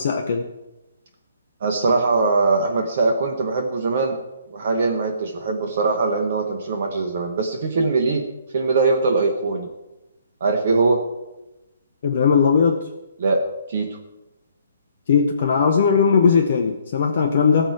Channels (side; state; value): both; inverted; correlation -0.63